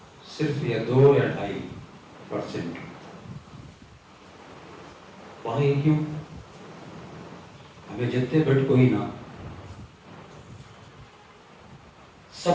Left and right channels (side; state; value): both; identical; correlation 1.00